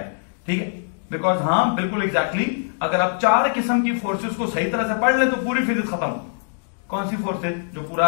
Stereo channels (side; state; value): right; silent; digital silence